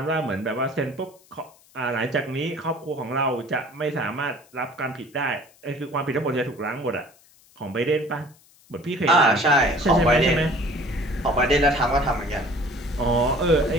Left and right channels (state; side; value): noise; left; hiss, 29 dB below the sound